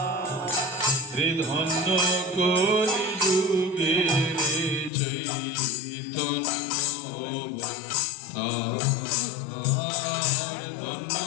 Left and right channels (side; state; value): right; drops out; at 4.9 s